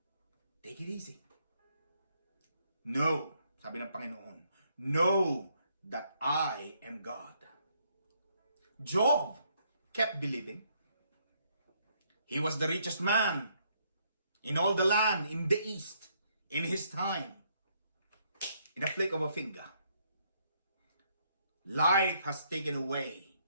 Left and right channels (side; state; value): both; inverted; correlation -0.72